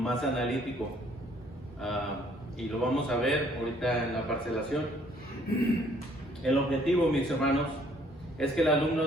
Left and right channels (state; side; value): normal; both; correlation 0.62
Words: analítico, y lo vamos a ver ahorita en la parcelación. El objetivo, mis hermanos, es que el